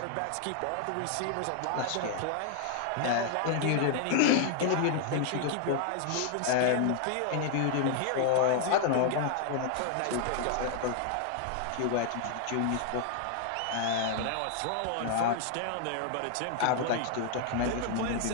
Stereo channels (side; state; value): both; different; correlation 0.00